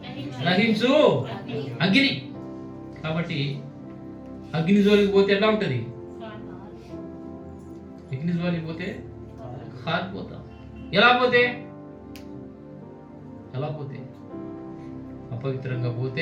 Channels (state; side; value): identical; both; correlation 1.00